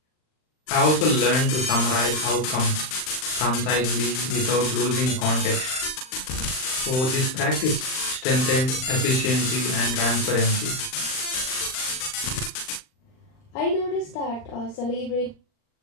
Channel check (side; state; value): right; late; 39 ms